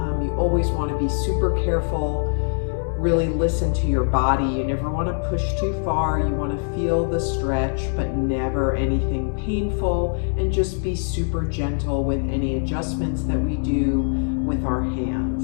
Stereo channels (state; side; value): silent; right; digital silence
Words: you always want to be super careful, really listen to your body. You never want to push too far. You want to feel the stretch, but never anything painful, and just be super gentle with any adjustments that we do with our